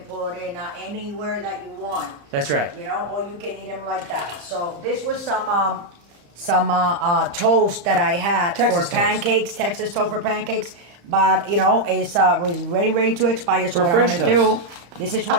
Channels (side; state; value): left; late; 35 ms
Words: put in anywhere that you want. That's right. You know, or you can eat them like that. So this was some toast that I had Texas for toast. pancakes, Texas toast for pancakes. But you know, it's was ready to expire. So For what French I'm gonna toast. do, this is